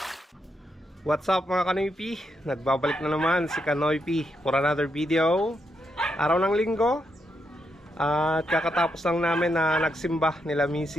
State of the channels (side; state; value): both; normal; correlation 0.81